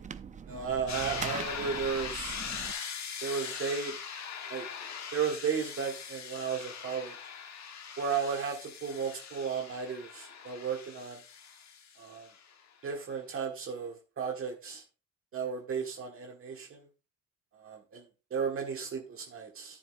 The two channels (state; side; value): quieter; left; 3.9 dB